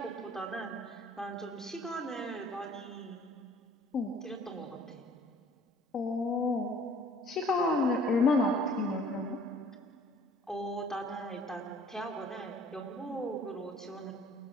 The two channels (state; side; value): normal; both; correlation 0.54